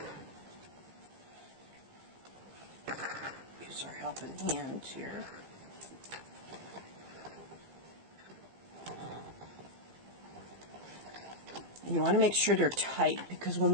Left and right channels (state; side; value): late; left; 15 ms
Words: helping hand here. And you want to make sure they're tight, because when